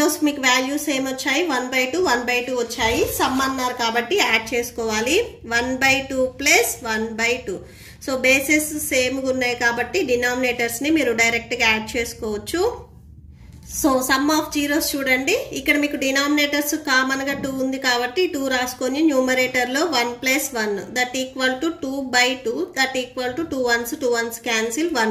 మీకు వాల్యూస్ ఏమొచ్చాయి 1/2 1/2 వచ్చాయి సమ్ అన్నారు కాబట్టి యాడ్ చేసుకోవాలి 1/2 ప్లస్ 1/2 సో బేసెస్ సేమ్గా ఉన్నాయి కాబట్టి డినామినేటర్స్ ని మీరు డైరెక్ట్ గా యాడ్ చేసుకోవచ్చు సో సమ్ ఆఫ్ జీరోస్ చూడండి ఇక్కడ మీకు డినామినేటర్స్ కామన్ గా 2 ఉంది కాబట్టి 2 రాసుకొని న్యూమరేటర్ లో 1 + 1 that equal to 2/2 that equal to 2 1s cancel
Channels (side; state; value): both; identical; correlation 1.00